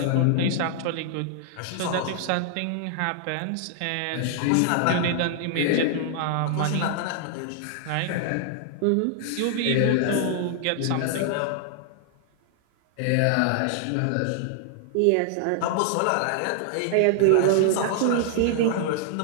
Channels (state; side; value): different; both; correlation -0.01